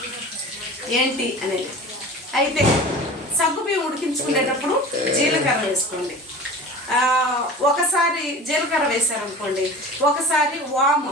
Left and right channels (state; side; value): normal; both; correlation 0.37